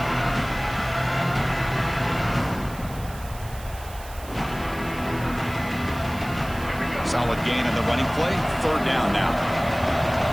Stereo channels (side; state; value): right; noise; hiss, 18 dB below the sound